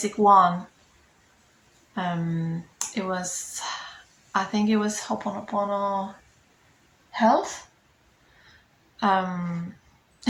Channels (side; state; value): both; identical; correlation 1.00